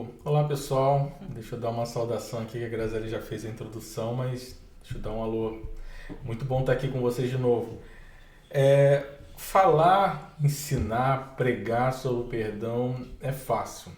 Olá, pessoal. Deixa eu dar uma saudação aqui, que a Graziele já fez a introdução, mas deixa eu dar um alô. Muito bom estar aqui com vocês de novo. Falar, ensinar, pregar sobre o perdão é fácil.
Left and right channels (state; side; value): identical; both; correlation 1.00